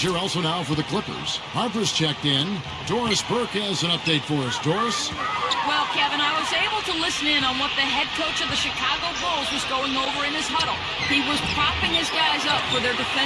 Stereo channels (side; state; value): both; identical; correlation 1.00